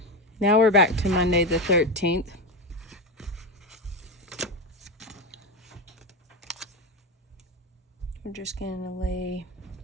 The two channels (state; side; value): normal; both; correlation 0.15